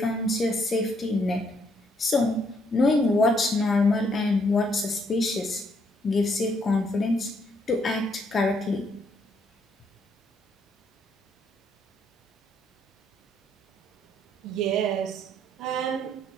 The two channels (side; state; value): both; normal; correlation 0.71